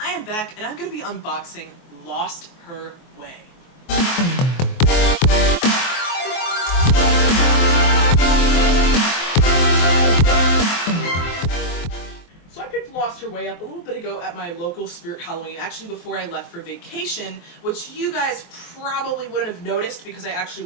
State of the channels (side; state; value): right; late; 23 ms